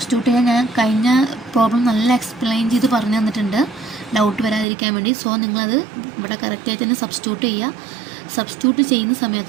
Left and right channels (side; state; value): left; drops out; at 4.7 s